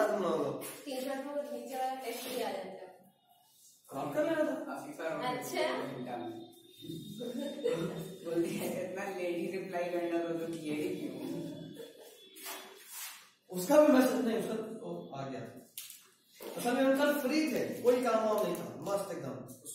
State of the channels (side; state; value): both; identical; correlation 1.00